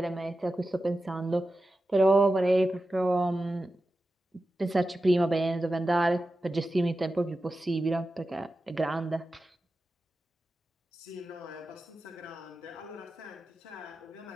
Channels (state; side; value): normal; both; correlation 0.92